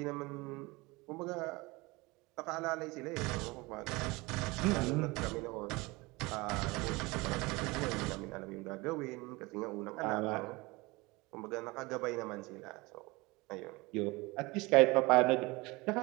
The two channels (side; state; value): left; quieter; 23.6 dB